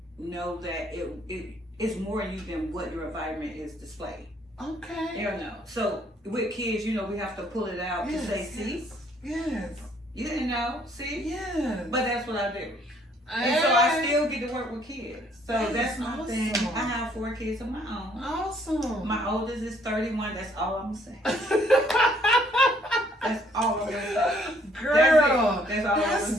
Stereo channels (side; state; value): both; normal; correlation 0.64